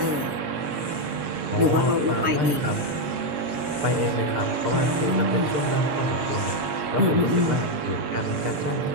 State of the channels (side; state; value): left; late; 7.3 ms